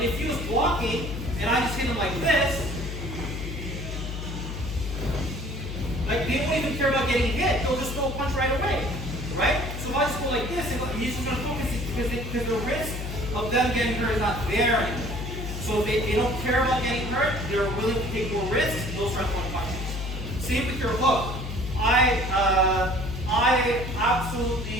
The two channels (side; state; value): left; noise; hum, 6 dB below the sound